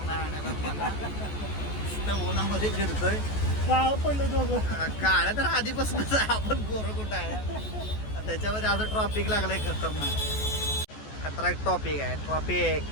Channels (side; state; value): right; late; 14 ms